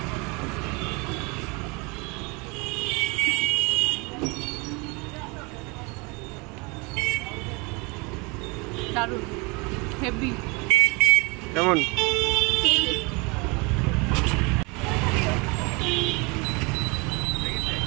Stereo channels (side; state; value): left; quieter; 28.2 dB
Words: দারুণ হেভি। কেমন?